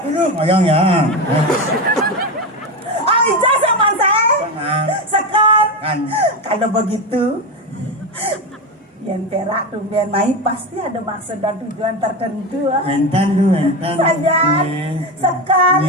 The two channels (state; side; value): normal; both; correlation 0.16